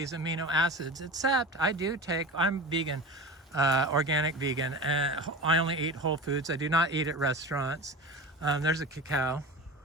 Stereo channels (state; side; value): normal; both; correlation 0.31